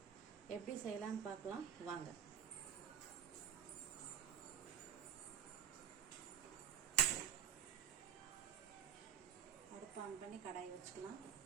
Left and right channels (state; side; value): quieter; left; 9.0 dB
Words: எப்படி செய்யலான்னு பார்க்கலாம் வாங்க. அடுப்பு ஆன் பண்ணி கடாயை வச்சுக்கலாம்.